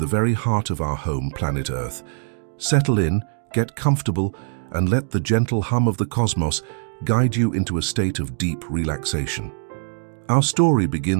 very heart of our home planet Earth. Settle in, get comfortable, and let the gentle hum of the cosmos guide you into a state of deep relaxation. Our story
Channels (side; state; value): left; silent; digital silence